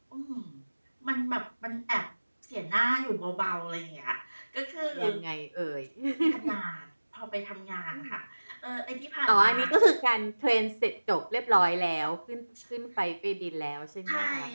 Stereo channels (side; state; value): both; inverted; correlation -1.00